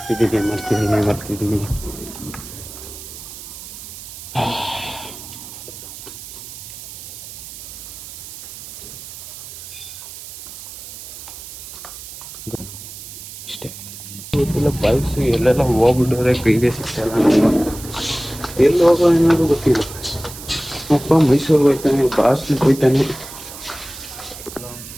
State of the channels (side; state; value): right; noise; hiss, 13 dB below the sound